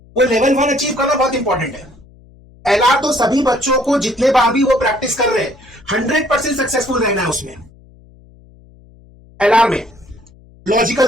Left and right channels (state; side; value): noise; left; hum, 26 dB below the sound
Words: वो लेवल 1 अचीव करना बहुत इंपॉर्टेंट है। एलआर तो सभी बच्चों को जितने बार भी वो प्रैक्टिस कर रहे हैं 100% सक्सेसफुल रहना है उसमें, एलआर में, लॉजिकल